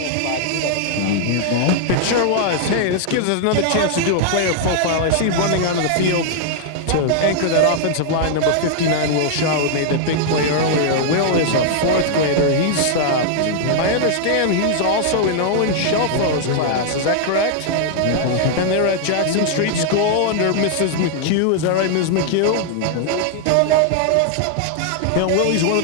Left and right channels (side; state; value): both; different; correlation 0.00